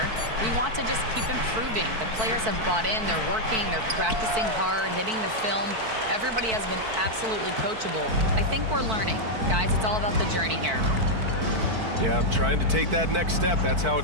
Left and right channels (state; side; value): late; left; 4.5 ms